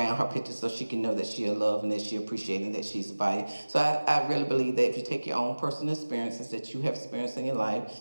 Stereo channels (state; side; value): inverted; both; correlation -1.00